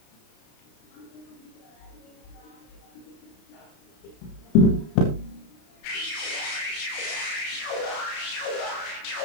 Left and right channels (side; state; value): right; late; 33 ms